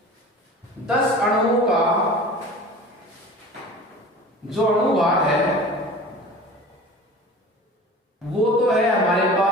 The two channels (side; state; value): both; normal; correlation 0.39